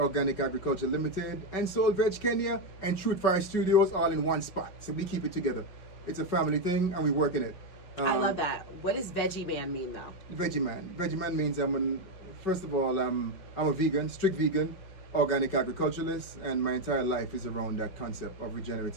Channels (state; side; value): late; right; 5.2 ms